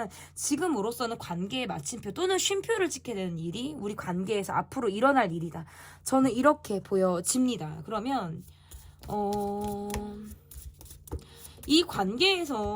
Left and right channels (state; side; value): identical; both; correlation 1.00